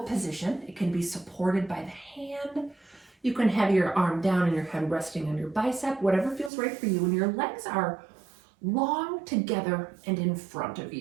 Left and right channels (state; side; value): drops out; left; at 6.5 s